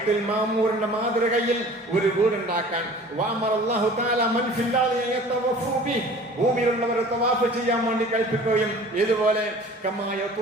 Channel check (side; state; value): both; normal; correlation 0.45